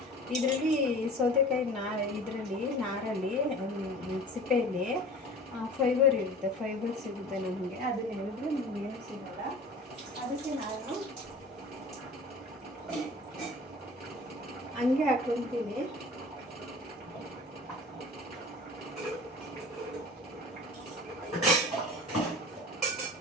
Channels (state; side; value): normal; both; correlation 0.41